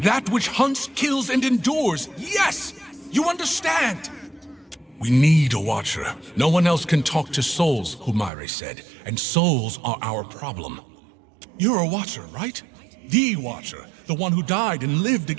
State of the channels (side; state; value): left; drops out; at 8.3 s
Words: That which hunts, kills, and endures, yes! You understand! We need a watcher. No one else can talk to souls, Humaire said, and souls are our problem. You're a watcher, right? The watcher, the one who died and lived